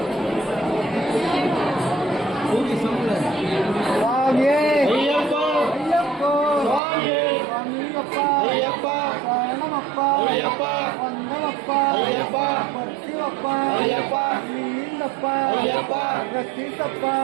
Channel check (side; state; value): left; drops out; at 6.8 s